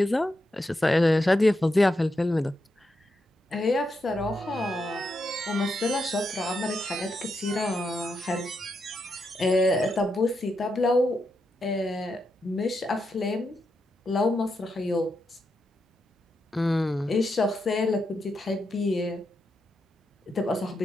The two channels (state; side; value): normal; both; correlation 0.84